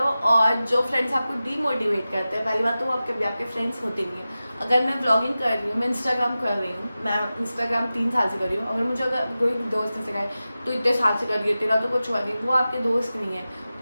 और जो फ्रेंड्स आपको डीमोटिवेट करते हैं, पहली बात तो वो आपके फ्रेंड्स होते नहीं हैं। अगर मैं व्लॉगिंग कर रही हूँ, मैं इंस्टाग्राम कर रही हूँ, मैं इंस्टाग्राम 3 साल से कर रही हूँ, अगर मुझे अगर कोई दोस्त ने सिखाए तो इतने साल से कर रही है, तेरा तो कुछ हुआ नहीं, वो आपके दोस्त नहीं है।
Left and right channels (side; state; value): both; inverted; correlation -0.95